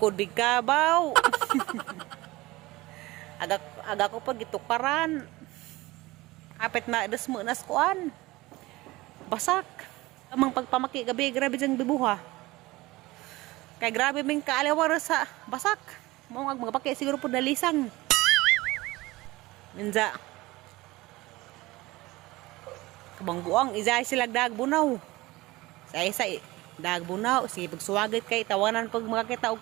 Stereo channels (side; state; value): left; quieter; 20.1 dB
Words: di kabaw. aga ko pag itukaran. Apet na desmo nas kuan. Basak. Amang pagpamaki gabi grabe jang bibuha. Kay grabe ming kaalawar sa basak. Mao ang mga paki siguro pud nalisang. Minja. Kabang buang izay sila dagbunaw. Sa isa dagbunaw sige pagsuwagit kay tawanan pag makakita